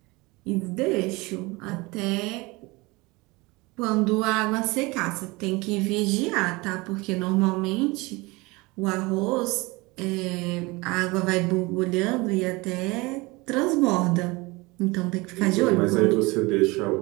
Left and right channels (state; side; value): quieter; left; 23.8 dB